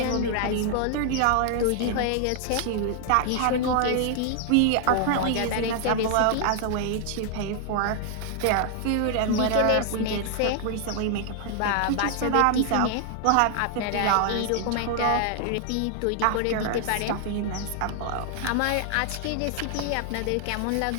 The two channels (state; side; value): different; both; correlation 0.00